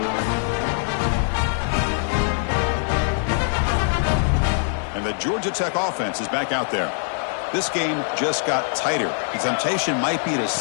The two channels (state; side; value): silent; right; 64 dB below the other